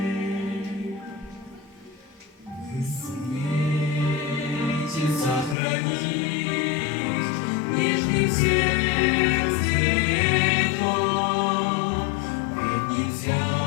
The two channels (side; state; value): right; drops out; at 5.6 s